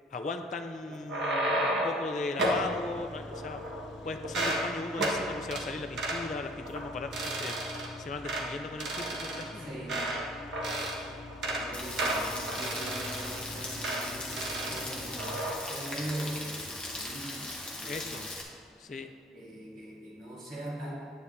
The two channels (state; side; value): normal; both; correlation 0.50